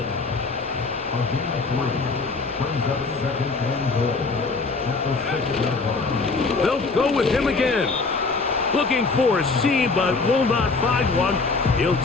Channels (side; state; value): right; quieter; 4.1 dB